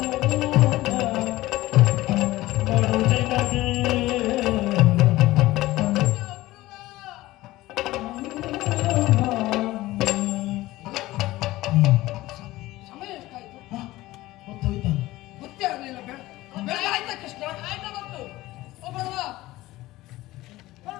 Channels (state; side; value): quieter; right; 17.6 dB